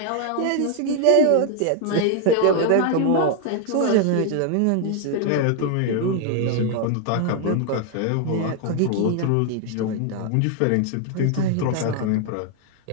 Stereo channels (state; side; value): different; both; correlation 0.00